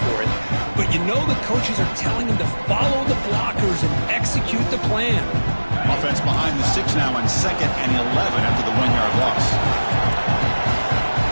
it, but you know the coaches are telling them to follow the blockers and execute the plan. Offense behind the 6 now on 2nd and 11 after the 1-yard loss.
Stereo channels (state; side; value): inverted; both; correlation -1.00